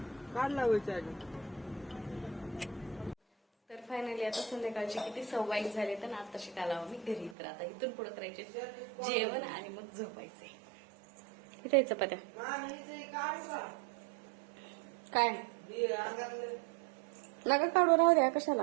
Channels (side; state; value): left; drops out; at 7.4 s